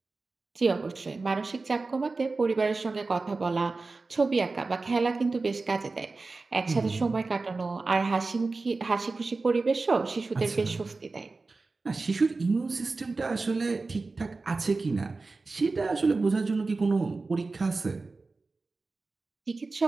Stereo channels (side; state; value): left; quieter; 3.7 dB